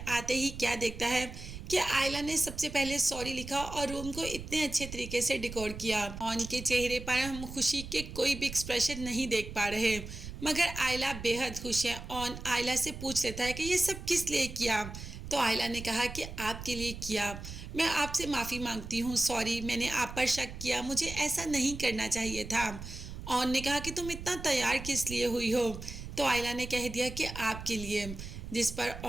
आते ही क्या देखता है कि आयला ने सबसे पहले सॉरी लिखा और रूम को इतने अच्छे तरीके से डेकोर किया। ऑन के चेहरे पर हम खुशी के कोई भी एक्सप्रेशन नहीं देख पा रहे, मगर आयला बेहद खुश है। ऑन आयला से पूछ लेता है कि ये सब किस लिए किया। तो आयला ने कहा कि आपके लिए किया। मैं आपसे माफ़ी मांगती हूँ, सॉरी, मैंने आप पर शक किया, मुझे ऐसा नहीं करना चाहिए था। ऑन ने कहा कि तुम इतना तैयार किस लिए हुई हो। तो आयला ने कह दिया कि आपके लिए, जिस पर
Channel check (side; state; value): right; noise; rumble, 10 dB below the sound